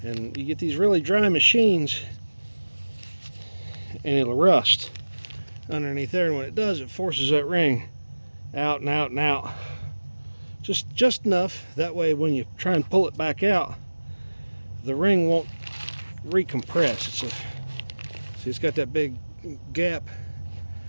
and you get these really dry machines and it'll rust underneath there, and when it does, it forces that ring out and out and out, just enough that way when you try and pull it back out, the ring won't recompress. See, it's got that big gap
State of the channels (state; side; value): inverted; both; correlation -1.00